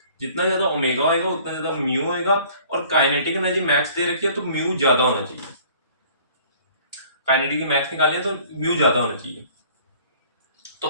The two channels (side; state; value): both; inverted; correlation -0.52